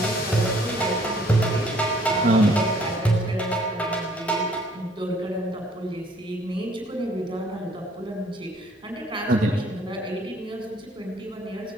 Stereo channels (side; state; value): both; normal; correlation 0.61